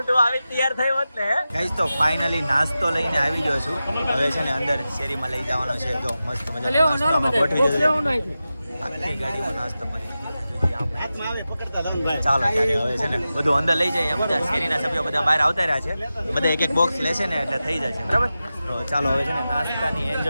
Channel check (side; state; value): both; inverted; correlation -0.93